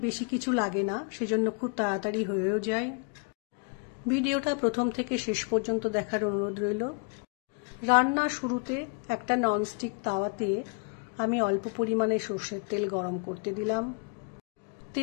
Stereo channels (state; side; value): quieter; right; 36.2 dB